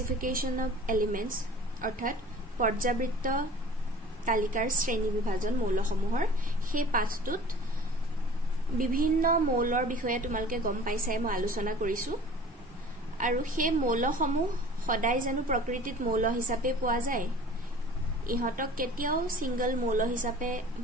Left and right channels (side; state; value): both; normal; correlation 0.44